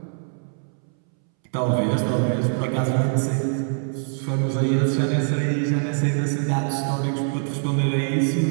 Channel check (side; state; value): left; silent; 63 dB below the other